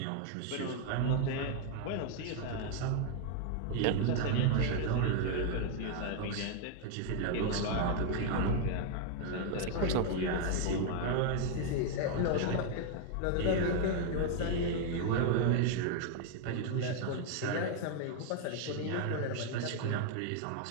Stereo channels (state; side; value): different; both; correlation 0.00